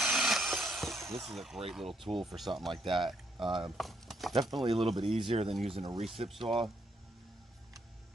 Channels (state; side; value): normal; both; correlation 0.74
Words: This is a great little tool for something like that. Definitely a little bit easier than using a recip saw.